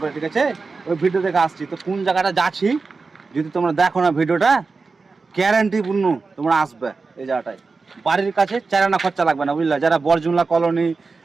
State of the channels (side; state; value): left; quieter; 4.3 dB